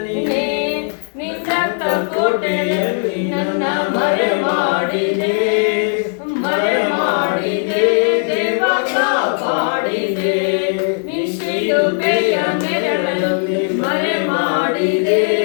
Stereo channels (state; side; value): silent; right; 56 dB below the other